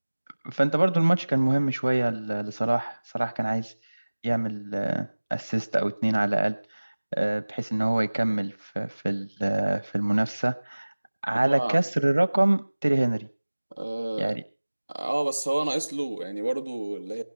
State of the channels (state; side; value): inverted; both; correlation -1.00